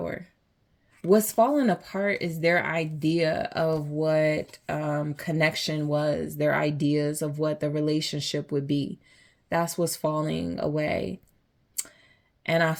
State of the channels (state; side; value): identical; both; correlation 1.00